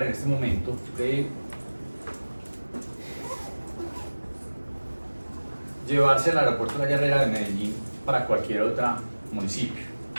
en este momento de llevarse al aeropuerto La Herrera de Medellín para cualquier otro municipio.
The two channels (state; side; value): inverted; both; correlation -1.00